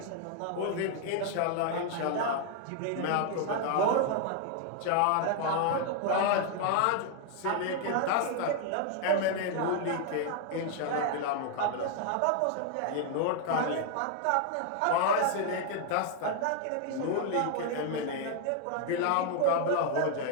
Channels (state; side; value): different; both; correlation 0.00